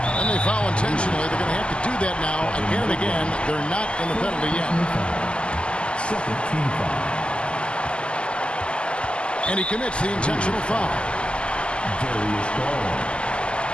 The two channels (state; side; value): late; right; 0.052 ms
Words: They foul intentionally. They're going to have to do that now again and again. They're not in the penalty yet. Second team foul. And he commits the intentional foul. Darius Garland.